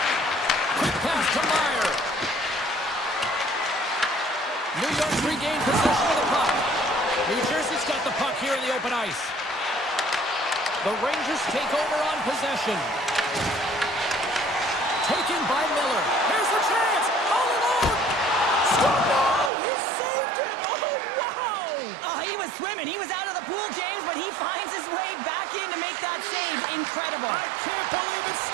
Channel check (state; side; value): drops out; left; at 19.5 s